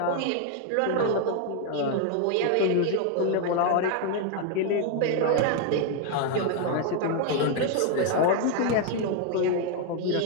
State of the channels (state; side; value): different; both; correlation 0.01